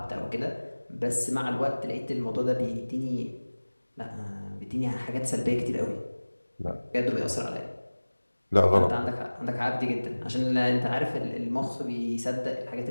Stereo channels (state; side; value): inverted; both; correlation -1.00